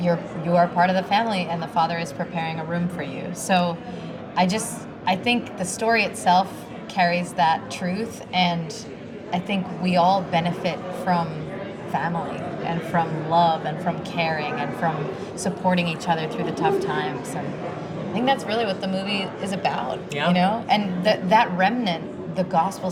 are part of the family, and the Father is preparing a room for you. So I think the story itself carries that truth, and I think we all benefit from family and from love and from caring and from supporting each other through the tough times. And I think that's really what the movie is about, Yeah. you know? And that remnant, the gospel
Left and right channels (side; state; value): both; identical; correlation 1.00